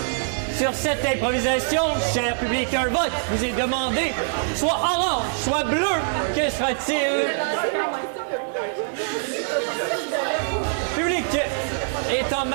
Sur cette improvisation, cher public, un vote vous est demandé. Soit orange, soit bleu. Que sera-t-il? Public est en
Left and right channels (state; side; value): silent; left; 61 dB below the other